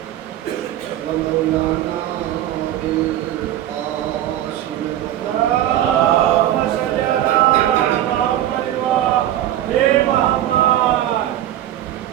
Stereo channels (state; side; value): quieter; left; 12.6 dB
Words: ومولانا بالقاسم اللهم صل على محمد وآل محمد.